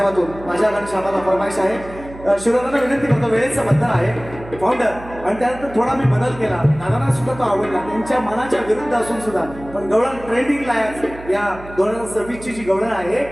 माझ्या घनश्यामाला फरमाईश आहे. शिरोदांना विनंती करतो, वेळेचं बंधन आहे फाउंडर, आणि त्यानंतर थोडा मी बदल केला. दादांना सुद्धा तो आवडला, त्यांच्या मनाच्या विरुद्ध असून सुद्धा. पण गवळण ट्रेंडिंगला आहे, या 2026ची जी गवळण आहे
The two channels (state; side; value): noise; right; hum, 16 dB below the sound